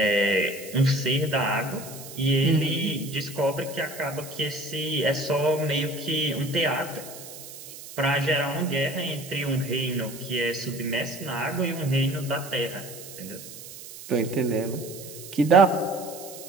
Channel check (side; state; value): right; noise; hiss, 14 dB below the sound